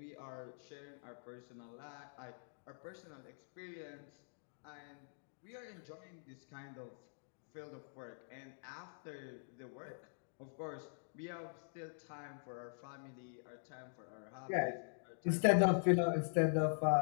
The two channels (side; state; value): right; silent; digital silence